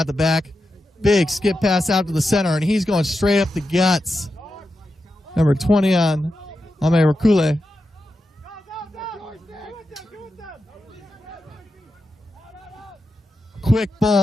the back. Big skip pass out to the center, and he's going straight up the guts. Number 20 on Ame Rakule. Quick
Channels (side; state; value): both; normal; correlation 0.89